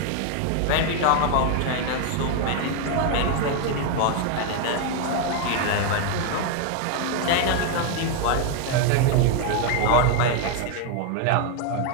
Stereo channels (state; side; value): different; both; correlation 0.01